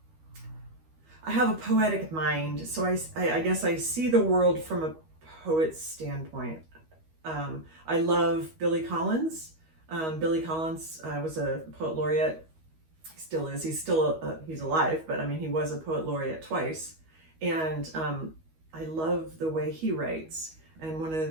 have a poetic mind, so I guess I see the world from a poet's standpoint. I love Billy Collins. Billy Collins was a poet laureate. He still is. He's still he's alive, but I mean, he was a poet laureate twice, and I love the way he writes. And one of the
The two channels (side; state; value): left; late; 13 ms